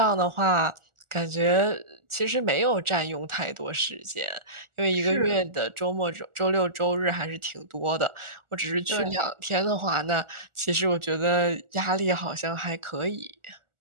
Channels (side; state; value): left; late; 1.4 ms